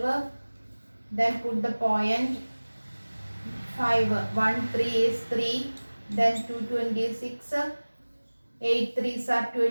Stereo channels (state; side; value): inverted; both; correlation -1.00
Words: Then put the point 5. 1 3 is 3. Then 226. 8 3s are